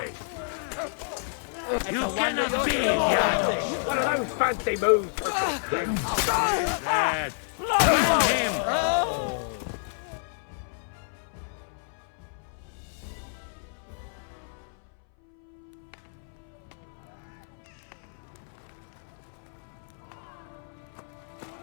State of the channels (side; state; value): right; silent; 58 dB below the other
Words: You cannot be here! One of those fancy moves for Lad, find him!